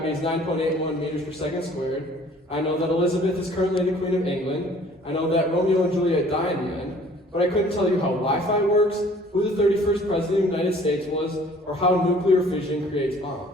is 9.81 meters per second squared. I know that Elizabeth is currently the Queen of England. I know that Romeo and Juliet die in the end. But I couldn't tell you how Wi-Fi works, who the 31st President of the United States was, or how nuclear fission creates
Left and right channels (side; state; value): both; normal; correlation 0.53